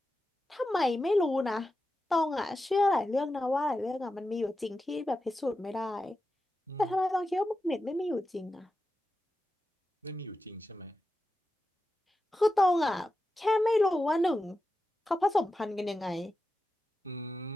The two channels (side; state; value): both; normal; correlation 0.91